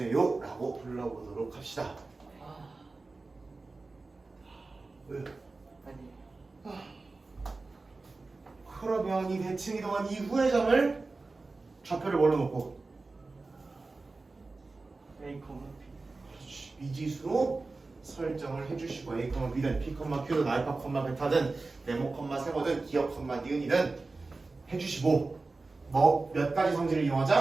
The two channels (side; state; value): left; quieter; 3.6 dB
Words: 라고 불러보도록 합시다. 왜? 그러면 이 대칭 이동한 이후의 점을 좌표를 뭘로 놓고 A, 그렇지. 미지수로 설정을 해주시고 A, B든 P, Q든 알파, 베타든 네모, 세모든 기억, 니은이든 해주시고 뭐 몇 가지 성질을